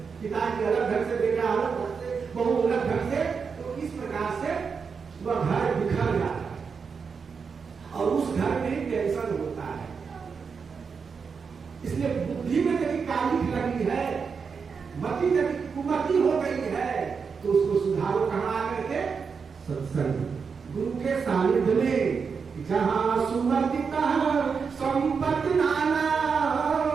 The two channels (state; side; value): quieter; left; 5.7 dB